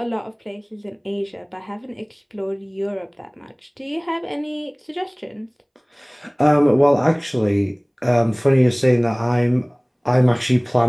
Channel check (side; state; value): both; identical; correlation 1.00